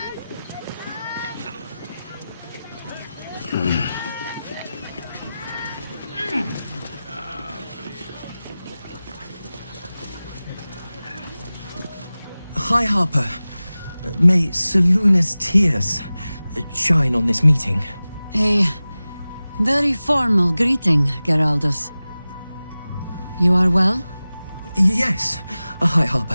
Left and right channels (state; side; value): inverted; both; correlation -0.97